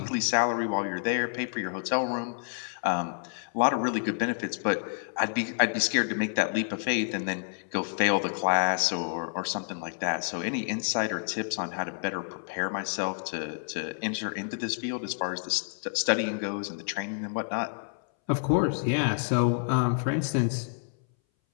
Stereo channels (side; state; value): right; silent; 59 dB below the other